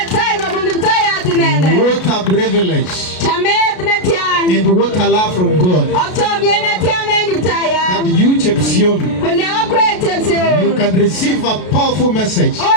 a privilege and what a love from God that you, Chepsion, you can receive a powerful message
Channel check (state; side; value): late; right; 33 ms